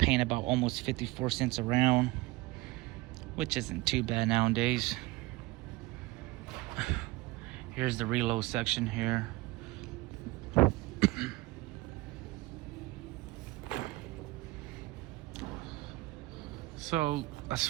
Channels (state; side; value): quieter; left; 20.8 dB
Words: about almost 54 cents a round, which isn't too bad nowadays. Here's the reload section here. So as